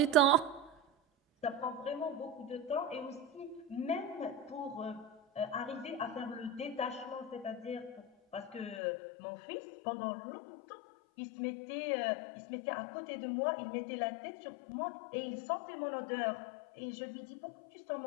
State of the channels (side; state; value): right; drops out; at 8.8 s